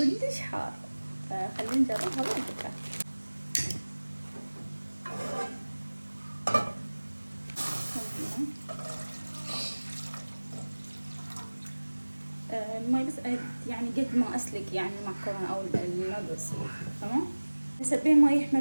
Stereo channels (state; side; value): inverted; both; correlation -1.00